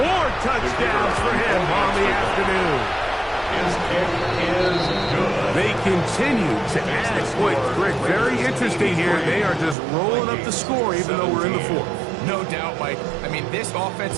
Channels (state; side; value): drops out; left; at 9.8 s